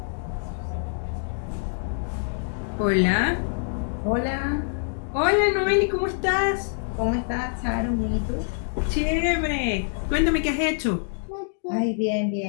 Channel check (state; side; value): silent; right; digital silence